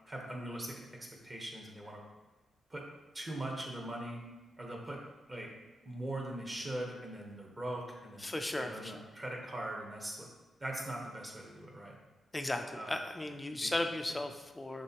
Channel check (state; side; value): normal; both; correlation 0.91